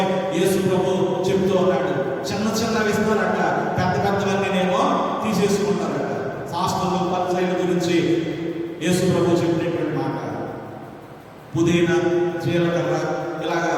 యేసు ప్రభు చెప్తూ ఉన్నాడు, చిన్న చిన్నవి ఇస్తారట, పెద్ద పెద్దవన్నీనేమో తీసేసుకుంటారట. శాస్త్రులు పరిచర్యల గురించి యేసు ప్రభు చెప్పినటువంటి మాట, పుదీనా, జీలకర్ర, ఇలాగా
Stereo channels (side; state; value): both; identical; correlation 1.00